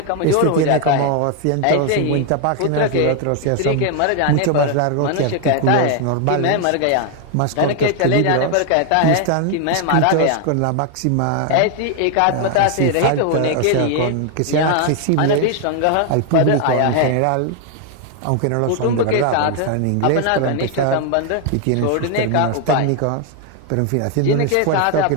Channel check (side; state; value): both; different; correlation 0.00